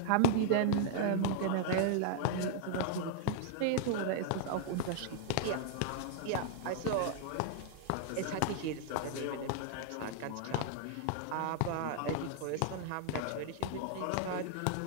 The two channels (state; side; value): different; both; correlation -0.01